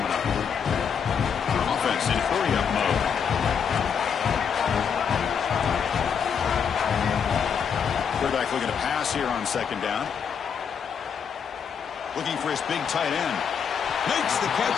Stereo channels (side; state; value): right; quieter; 7.1 dB